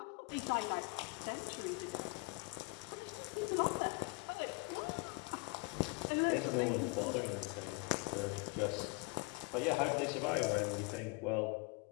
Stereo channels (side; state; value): right; quieter; 27.1 dB